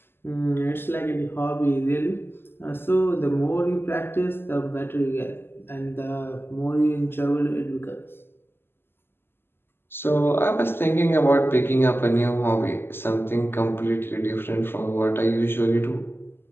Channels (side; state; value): right; late; 0.11 ms